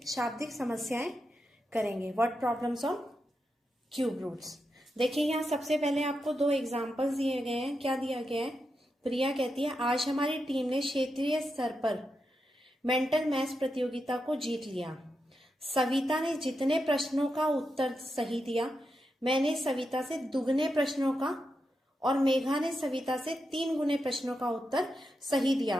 शाब्दिक समस्याएं करेंगे। What problems on cube roots. देखिए, यहाँ सबसे पहले आपको दो एग्जांपल्स दिए गए हैं। क्या दिया गया है? प्रिया कहती है, आज हमारी टीम ने क्षेत्रीय स्तर पर मेंटल मैथ्स प्रतियोगिता को जीत लिया। सविता ने जितने प्रश्नों का उत्तर सही दिया, मैंने सविता से दुगने प्रश्नों का और मेघा ने सविता से 3 गुने प्रश्नों का उत्तर सही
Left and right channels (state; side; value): normal; both; correlation 0.87